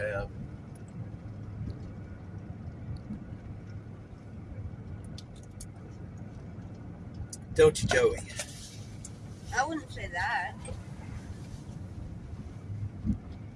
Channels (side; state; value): both; identical; correlation 1.00